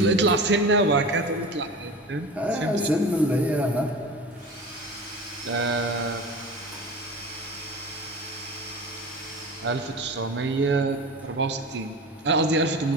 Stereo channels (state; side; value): normal; both; correlation 0.33